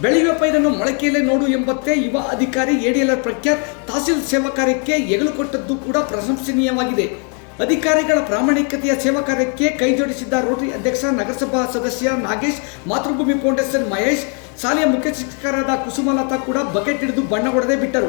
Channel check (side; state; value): right; quieter; 39.4 dB